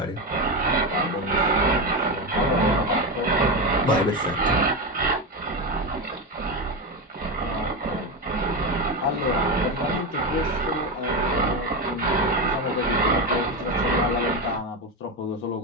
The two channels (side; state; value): both; normal; correlation 0.15